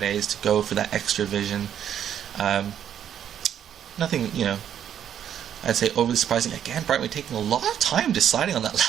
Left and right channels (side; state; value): left; quieter; 9.6 dB